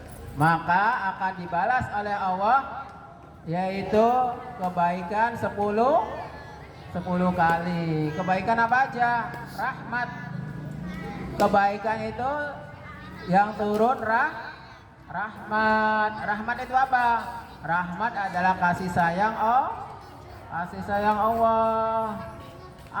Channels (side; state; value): both; identical; correlation 1.00